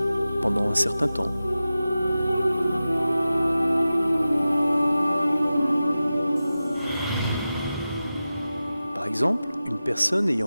pendant un certain temps. Par exemple, une personne ayant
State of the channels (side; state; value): both; inverted; correlation -0.94